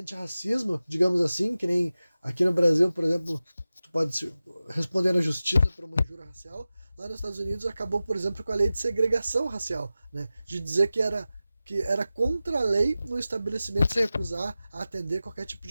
digamos assim, que nem aqui no Brasil, por exemplo, tu pode responder na justiça por uma injúria racial, lá nos Estados Unidos acabou, por exemplo, com a lei de segregação racial, né? De dizer que era contra a lei no estabelecimento se recusar a atender qualquer tipo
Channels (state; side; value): inverted; both; correlation -0.95